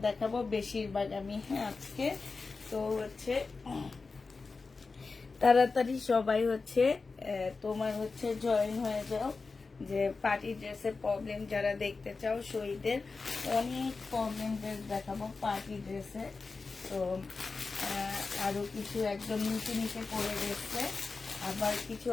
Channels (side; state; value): right; quieter; 4.2 dB